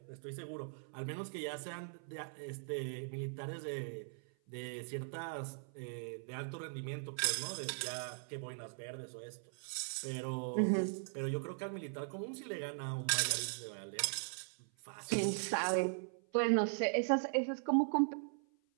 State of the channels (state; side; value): silent; left; 51 dB below the other